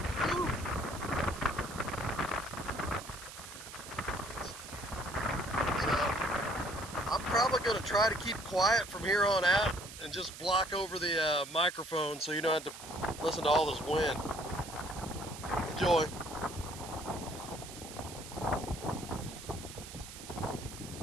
Woo. So I'm probably going to try to keep quiet from here on out and just block over the microphone so you don't have to listen to all this wind. Enjoy.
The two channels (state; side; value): noise; right; hiss, 13 dB below the sound